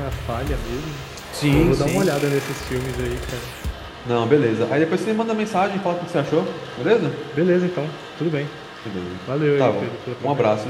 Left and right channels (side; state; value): both; identical; correlation 1.00